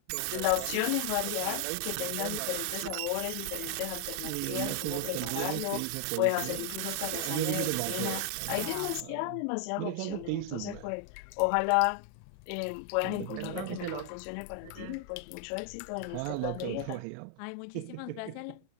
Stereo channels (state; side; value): different; both; correlation 0.00